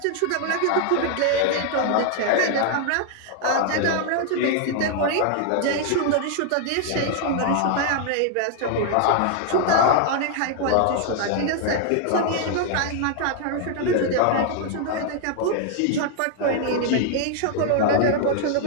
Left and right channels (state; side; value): different; both; correlation 0.00